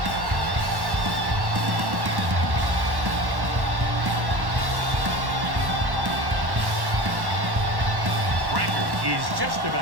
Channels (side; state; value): left; late; 1.1 ms